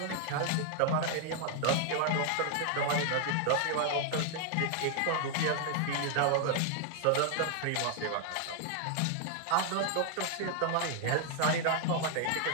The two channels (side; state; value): both; different; correlation 0.00